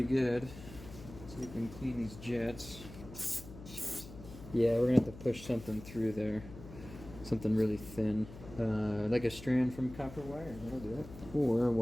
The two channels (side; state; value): left; noise; hum, 15 dB below the sound